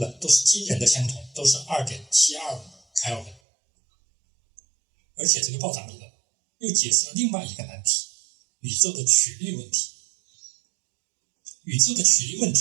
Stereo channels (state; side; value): drops out; left; at 3.4 s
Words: 都是惊人的相同，都是 2.725 开尔文。而且这个暴涨理论又解释了另外一个难题，宇宙的曲率问题。宇宙的曲率问